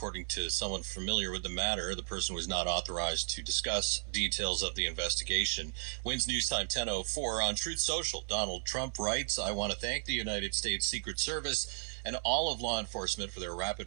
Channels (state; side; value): silent; left; 55 dB below the other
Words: to someone familiar with the matter. The person was not authorized to discuss details of the investigation. WINS News Time 10:04 on Truth Social. Donald Trump writes, "I want to thank the United States Secret Service and all of law enforcement for their